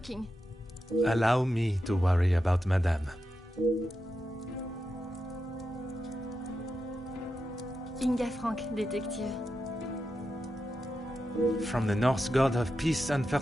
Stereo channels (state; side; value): normal; both; correlation 0.88